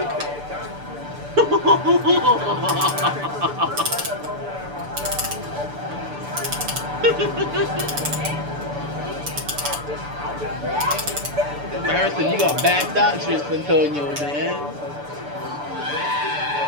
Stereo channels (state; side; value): late; left; 6.9 ms